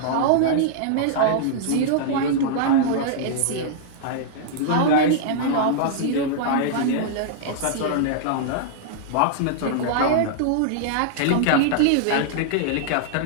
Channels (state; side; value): different; both; correlation -0.02